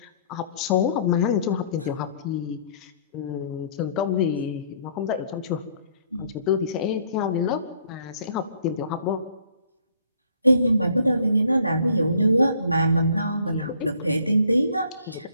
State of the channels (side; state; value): both; inverted; correlation -0.60